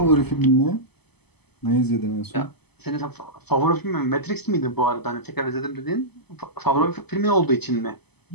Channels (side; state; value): right; late; 0.98 ms